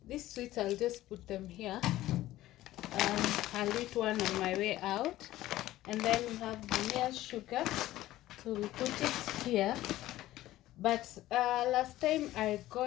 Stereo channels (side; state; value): right; quieter; 15.4 dB